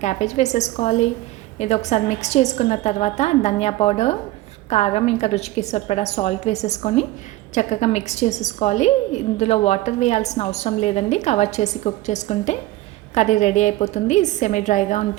క్యాబేజ్ వేసేసుకోవాలి. ఇది ఒకసారి మిక్స్ చేసుకున్న తర్వాత ధనియా పౌడర్, కారం, ఇంకా రుచికి సరిపడా సాల్ట్ వేసేసుకొని చక్కగా మిక్స్ చేసేసుకోవాలి. ఇందులో వాటర్ వేయాల్సిన అవసరం లేదండి. కవర్ చేసి కుక్ చేసుకుంటే కర్రీ రెడీ అయిపోతుంది. సెమీ డ్రైగా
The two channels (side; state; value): left; quieter; 17.2 dB